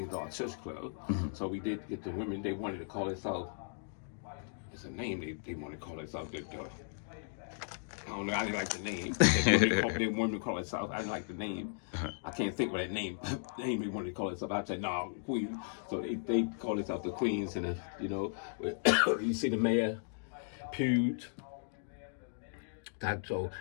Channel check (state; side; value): silent; right; digital silence